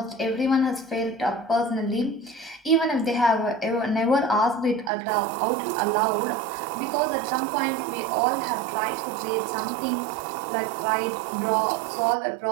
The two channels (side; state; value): left; drops out; at 4.9 s